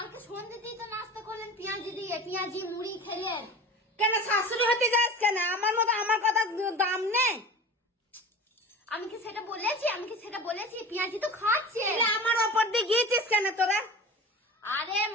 সন্ধ্যেতেই তো নাস্তা করলেন পেঁয়াজি দিয়ে, পেঁয়াজি মুড়ি খেলেন। কেন? শাশুড়ি হতে যাস কেন? আমার মতো আমার কথা দাম নেই? আমি কি সেটা বলেছি? পেঁয়াজি তো খাচ্ছে। আমার ওপর দিয়ে গিয়েছিস কেন তোরা? আরে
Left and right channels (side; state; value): both; normal; correlation 0.34